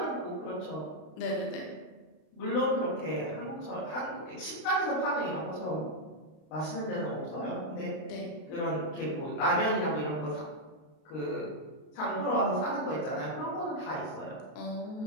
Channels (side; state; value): right; late; 32 ms